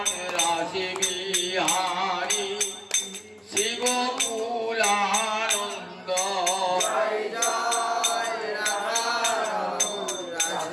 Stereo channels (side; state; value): both; identical; correlation 1.00